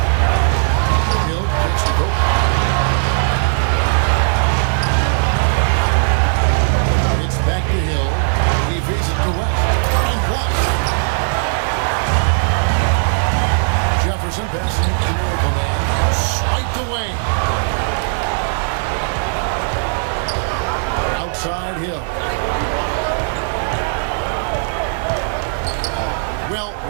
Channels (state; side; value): silent; left; digital silence